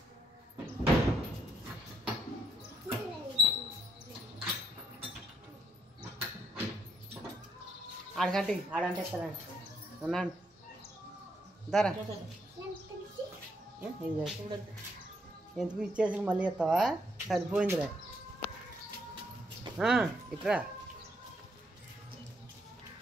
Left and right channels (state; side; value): normal; both; correlation 0.73